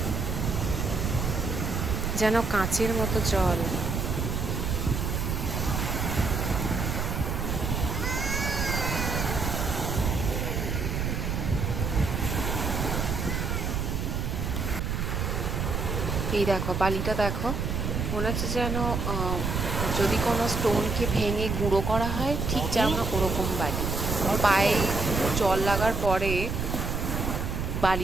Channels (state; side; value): noise; right; rumble, 1 dB below the sound